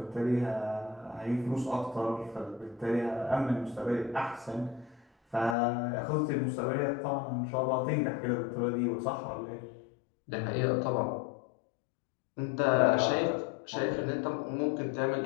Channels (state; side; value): drops out; right; at 5.6 s